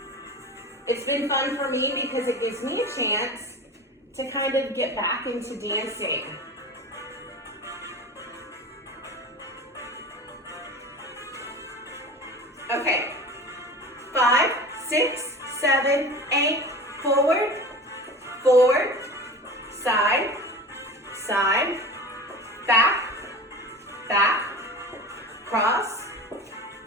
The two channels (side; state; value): both; normal; correlation 0.34